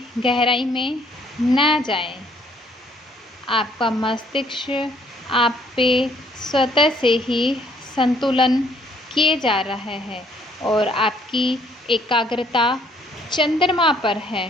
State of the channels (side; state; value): both; normal; correlation 0.64